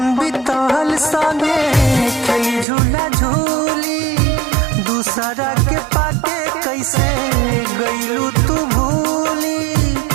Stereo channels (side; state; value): left; drops out; at 2.7 s